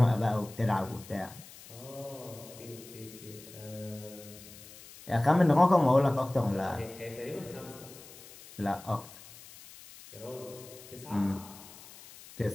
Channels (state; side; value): noise; left; hiss, 18 dB below the sound